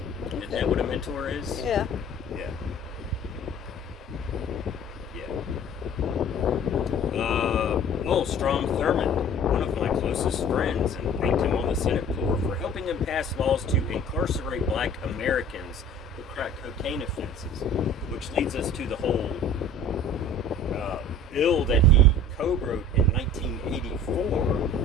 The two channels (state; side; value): normal; both; correlation 0.46